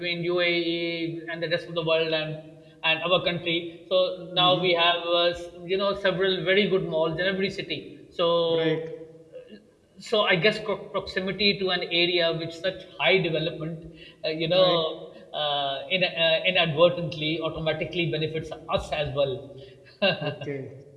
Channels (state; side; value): identical; both; correlation 1.00